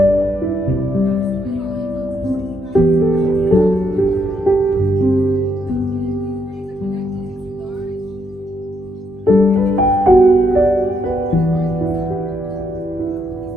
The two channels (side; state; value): both; normal; correlation 0.76